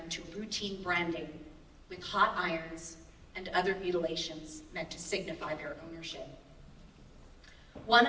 to routine branding with hot irons and other mutilations meant to signify their ownership. One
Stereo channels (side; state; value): both; identical; correlation 1.00